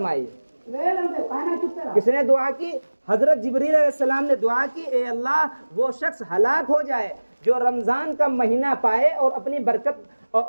کس نے دعا کی؟ حضرت جبریل علیہ السلام نے دعا کی، اے اللہ، وہ شخص ہلاک ہو جائے جو رمضان کا مہینہ پائے اور اپنی برکت اور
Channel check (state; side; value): inverted; both; correlation -1.00